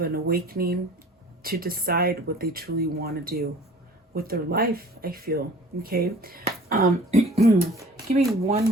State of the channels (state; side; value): normal; both; correlation 0.47